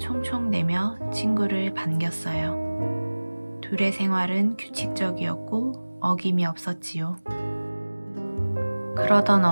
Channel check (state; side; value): inverted; both; correlation -1.00